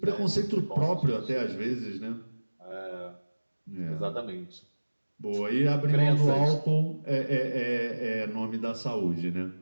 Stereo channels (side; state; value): both; inverted; correlation -1.00